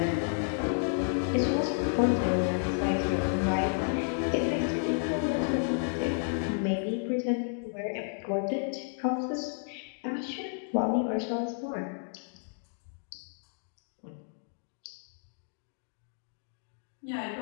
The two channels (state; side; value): silent; right; digital silence